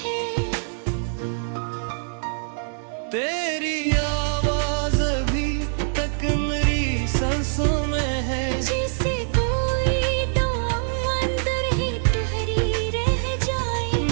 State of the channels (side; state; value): left; silent; digital silence